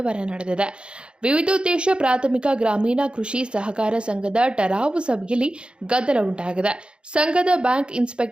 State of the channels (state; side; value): late; left; 0.054 ms